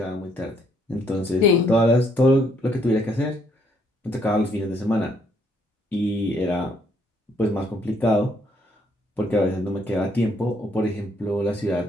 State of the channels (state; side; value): normal; both; correlation 0.69